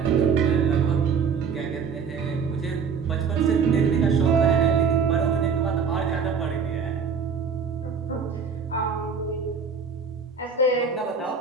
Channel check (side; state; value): left; quieter; 6.0 dB